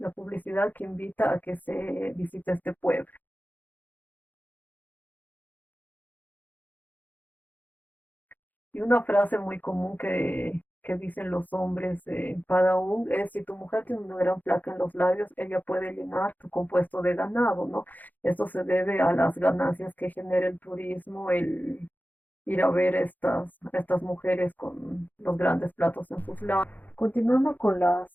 que invita a que se visite este pueblo. Y una frase muy común que dicen los hombres en Padaún es: si tu mujer tiene una gran placa en los labios, ella puede llenar tu compuesto de ganado, ¿no? Esto se debe a las ganancias que genera el turismo, el ir a ver estas mujeres con los grandes platos en sus labios. Continuando con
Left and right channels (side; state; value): right; late; 0.083 ms